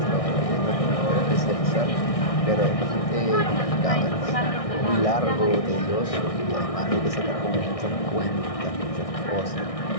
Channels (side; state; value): right; late; 1.6 ms